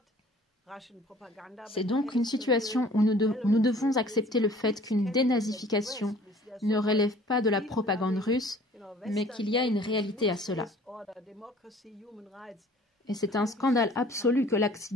C'est donc une situation où nous devons accepter le fait qu'une dénazification ne relève pas de la propagande russe, mais qu'il y a une réalité à cela. Et c'est un scandale absolu que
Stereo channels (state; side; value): normal; both; correlation 0.51